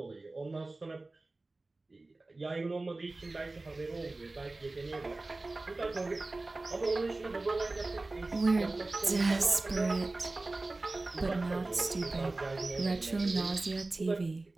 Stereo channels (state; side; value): quieter; left; 3.1 dB